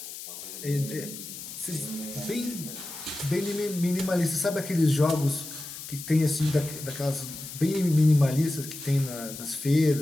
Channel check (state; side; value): noise; left; hiss, 11 dB below the sound